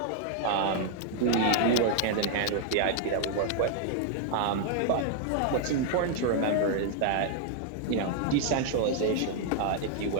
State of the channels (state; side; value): different; both; correlation 0.00